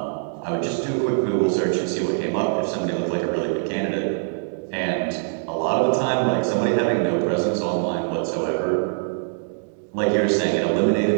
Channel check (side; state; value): left; silent; digital silence